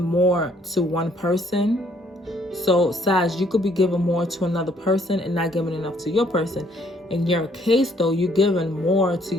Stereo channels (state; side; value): normal; both; correlation 0.65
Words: more to one person. So Sag, you could be giving more to another person and not giving enough to your person. In your case though, you're giving more to